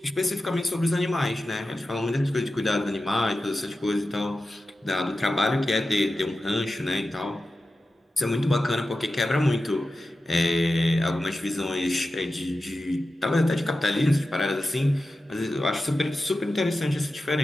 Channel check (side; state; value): both; normal; correlation 0.93